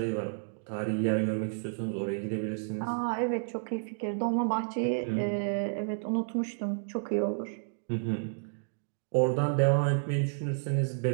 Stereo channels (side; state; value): left; silent; digital silence